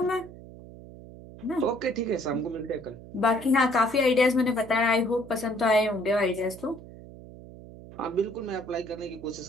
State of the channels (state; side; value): noise; right; hum, 17 dB below the sound